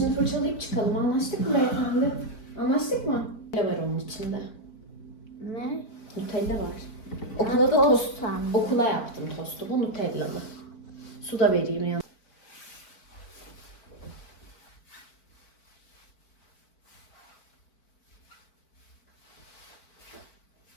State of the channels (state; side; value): late; right; 4.4 ms